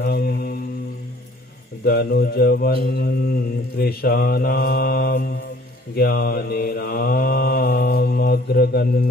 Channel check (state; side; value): normal; both; correlation 0.55